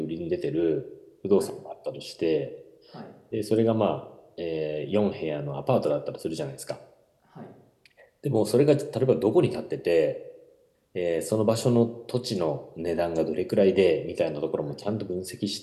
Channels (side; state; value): both; identical; correlation 1.00